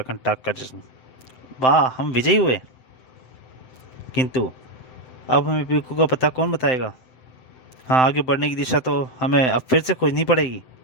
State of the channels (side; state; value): right; late; 7.8 ms